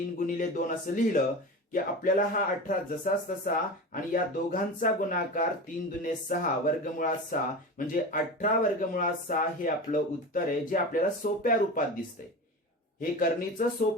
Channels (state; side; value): normal; both; correlation 0.29